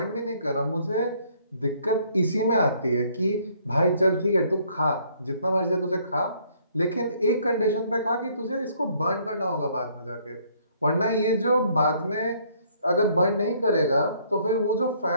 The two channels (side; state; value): both; inverted; correlation -0.64